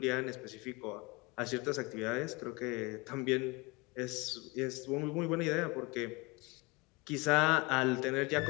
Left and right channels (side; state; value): right; quieter; 26.0 dB